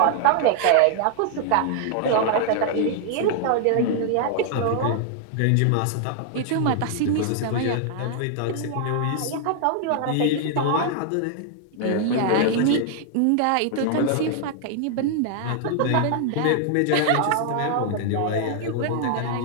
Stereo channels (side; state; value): both; different; correlation 0.00